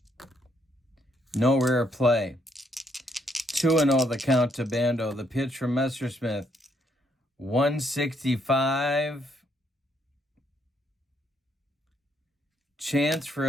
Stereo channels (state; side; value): normal; both; correlation 0.72